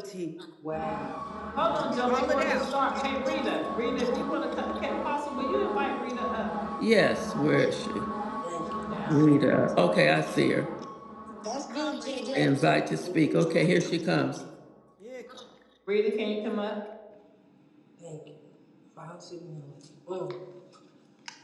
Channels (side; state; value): both; identical; correlation 1.00